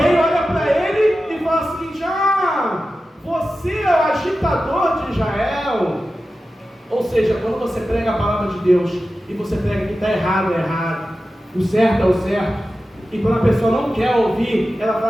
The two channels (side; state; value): both; normal; correlation 0.93